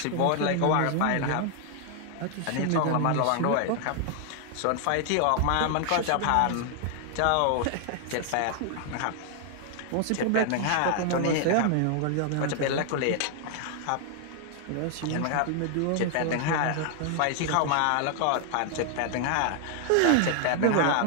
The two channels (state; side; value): different; both; correlation 0.00